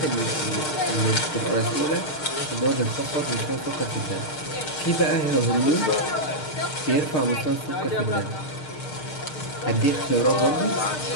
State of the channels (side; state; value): right; late; 6.5 ms